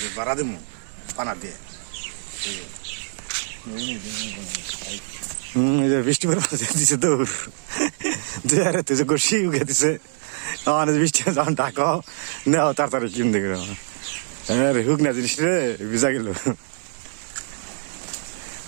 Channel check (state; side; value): silent; left; 63 dB below the other